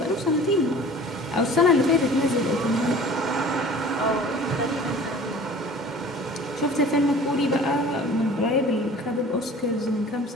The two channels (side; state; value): both; normal; correlation 0.45